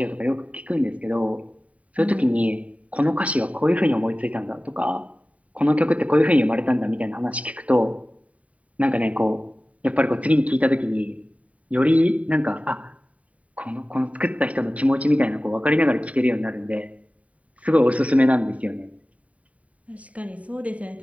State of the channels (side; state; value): left; late; 0.067 ms